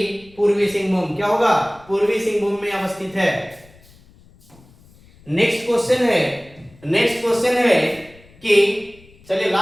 पूर्वी सिंहभूम। क्या होगा? पूर्वी सिंहभूम में अवस्थित है। नेक्स्ट क्वेश्चन है कि चलिए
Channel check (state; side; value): noise; left; rumble, 26 dB below the sound